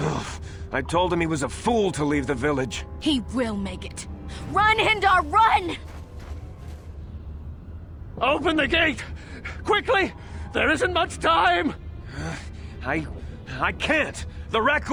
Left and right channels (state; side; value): identical; both; correlation 1.00